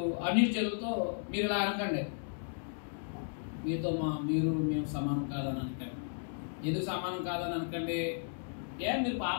అన్యులతో మీరు ఇలా అనకండి. మేము సమానం కాదని అనకండి. ఎందుకు సమానం కాదని అనకండి? మీరు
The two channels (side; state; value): right; silent; digital silence